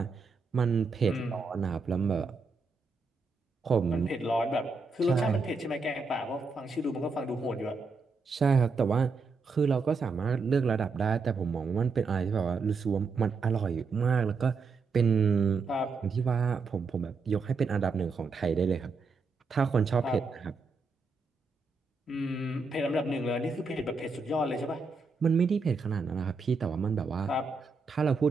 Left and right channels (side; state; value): left; quieter; 4.3 dB